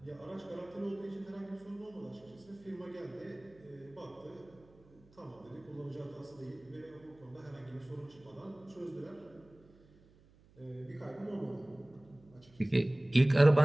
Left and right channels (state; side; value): noise; right; hum, 27 dB below the sound